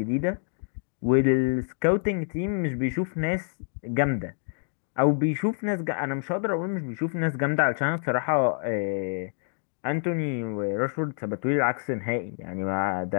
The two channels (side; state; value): right; silent; 60 dB below the other